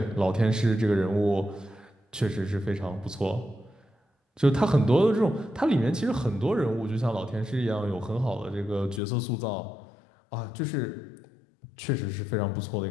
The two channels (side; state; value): right; drops out; at 9.0 s